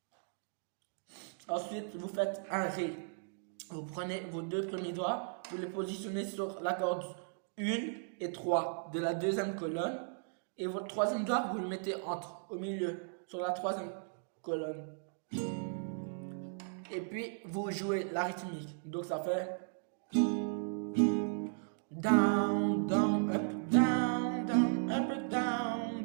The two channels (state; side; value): silent; left; digital silence